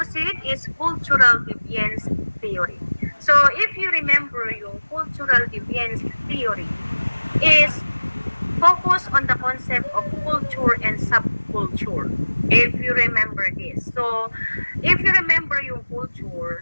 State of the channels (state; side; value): inverted; both; correlation -1.00